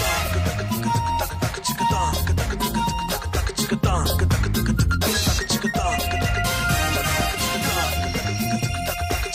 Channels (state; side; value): identical; both; correlation 1.00